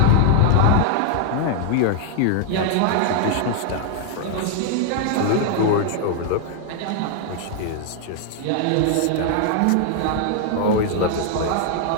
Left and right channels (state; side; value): different; both; correlation 0.00